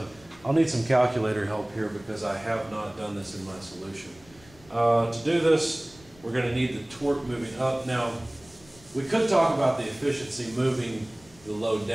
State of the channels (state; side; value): noise; left; rumble, 25 dB below the sound